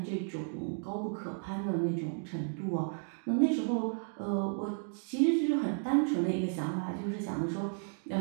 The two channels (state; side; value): silent; left; 56 dB below the other